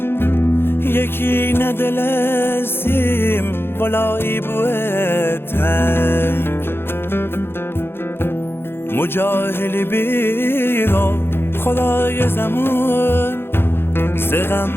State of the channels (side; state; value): right; late; 0.11 ms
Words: یکی ندل سیم ولایی بوه تنگ مجاهلی بیرا خدای زمان